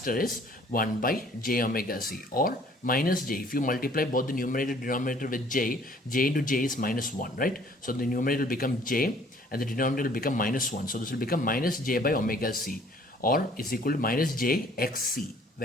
is 1 by j omega c, or minus j. If you multiply both the numerator and denominator with j into j is minus 1, right? So the numerator will become j and the denominator will become minus 1. So this will become minus j by omega c, or is equal to minus j xc,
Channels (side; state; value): both; normal; correlation 0.57